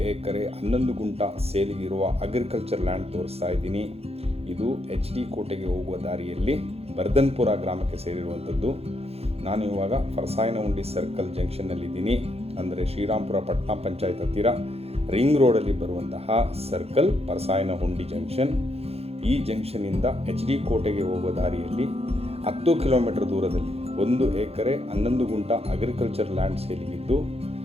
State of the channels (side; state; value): left; late; 0.29 ms